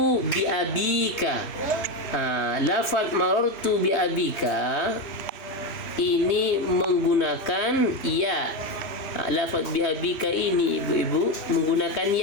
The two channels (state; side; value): late; right; 3.0 ms